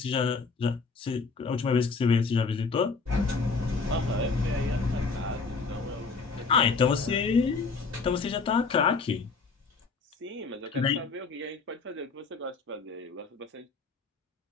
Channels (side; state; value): right; quieter; 4.5 dB